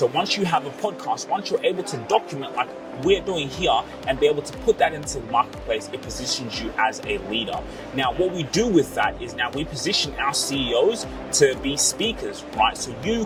once you have a podcast, once you're able to document like we're doing here and be able to put that into the marketplace, it positions you as a leader. Now, what we do with that is now we position our CEOs to be speakers, right? So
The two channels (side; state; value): both; identical; correlation 1.00